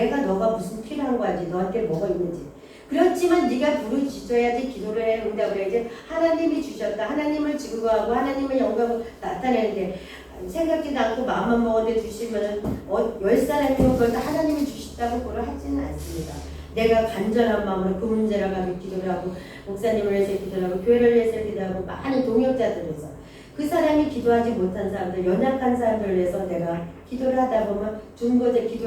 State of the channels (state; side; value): identical; both; correlation 1.00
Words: 너가 무슨 필요한 거 알지. 너한테 뭐가 있는지. 그렇지만 네가 부르짖어야지 기도를 해 응답을 해야지 하나님이 주셨다. 하나님을 증거하고 하나님의 영광을 나타내는데 생각지도 않고 마음만 먹었는데 주시면은 10사람이면 그걸 다 하나님이 주셨다고 그걸 하지는 않습니다. 내가 간절한 마음으로 그 문제를 가지고 기도를 하고 목사님을 위해서 기도를 하고 교회를 위해서 기도를 하고 많은 동역자들을 위해서 그 사람이 기도하지 못한 사람들 연약한 사람들을 위해서 내가 기도를 하다 보면